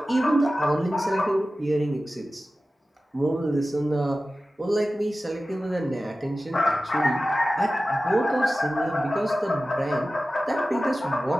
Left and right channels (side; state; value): both; normal; correlation 0.95